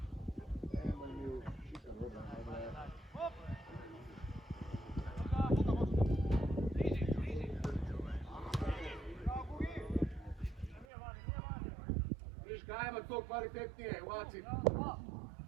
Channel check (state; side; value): drops out; left; at 10.9 s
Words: Ajmo to kvalitetnije, uvaci.